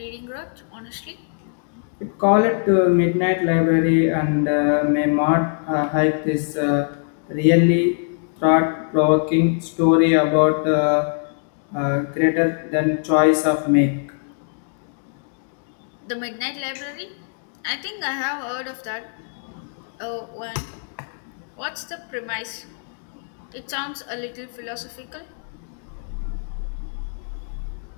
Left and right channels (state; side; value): silent; right; digital silence